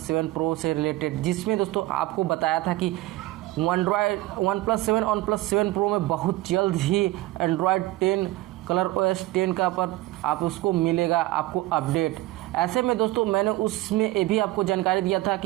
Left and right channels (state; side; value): quieter; left; 17.7 dB